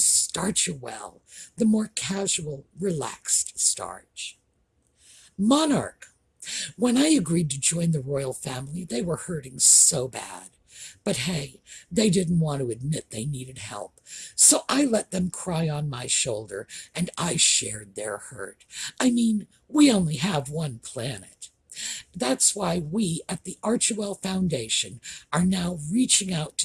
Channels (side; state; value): both; identical; correlation 1.00